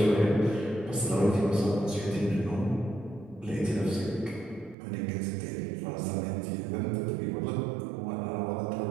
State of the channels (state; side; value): drops out; left; at 4.8 s